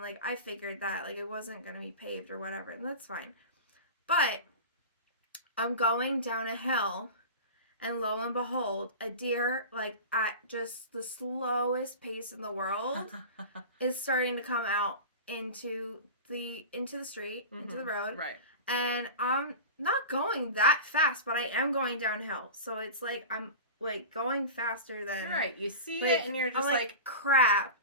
I figured that like it wasn't going to be paved or whatever, and that's fine. But I'm going down a hill, and lo and behold, a deer, like at just the slowest pace in the world, is starting to come out into the street, into the road. Right. And I'm not going that fast, but I am going downhill. So it's like I'm like going faster than right. You see it, and you're just like crap.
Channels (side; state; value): both; inverted; correlation -0.31